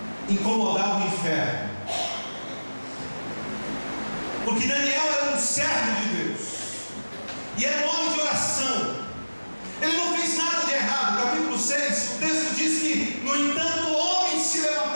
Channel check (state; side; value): inverted; both; correlation -1.00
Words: incomodava o inferno. Porque Daniel era um servo de Deus, e era um homem de oração. Ele não fez nada de errado. Capítulo 6, o texto diz que, no entanto, homens se